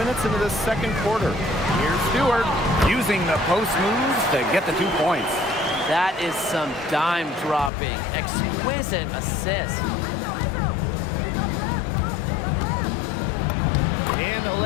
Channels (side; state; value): right; drops out; at 7.7 s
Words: into the second quarter. Here's Stewart using the post moves to get the 2 points. That is some dime dropping, exquisite assist. And the